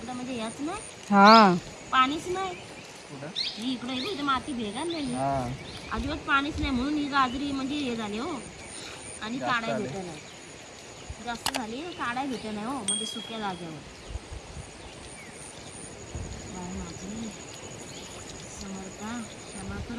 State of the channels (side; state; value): both; identical; correlation 1.00